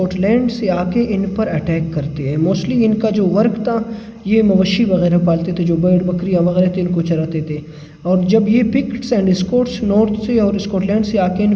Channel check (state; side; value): identical; both; correlation 1.00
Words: से आके इन पर अटैक करते हैं। मोस्टली इनका जो वर्क था, ये मवेशी वगैरह पालते थे, जो भेड़ बकरियां वगैरह थे इनको चराते थे। और जब ये पिक्ट्स एंड स्कॉट्स नॉर्थ से और स्कॉटलैंड से आके